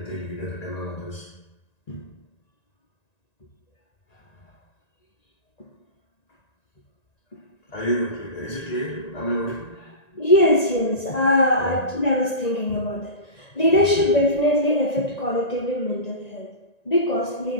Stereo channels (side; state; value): right; late; 1.9 ms